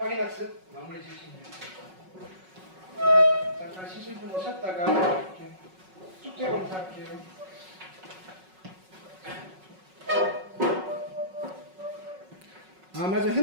마무리 지으시면 돼요. 잠깐 쉬실 분 오셨다가 이렇게 숙제 검사할게요. 아 맞아,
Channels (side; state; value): left; late; 5.4 ms